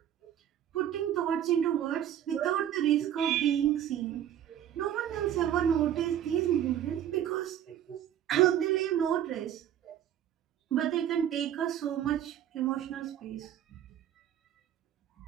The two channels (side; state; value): left; quieter; 10.7 dB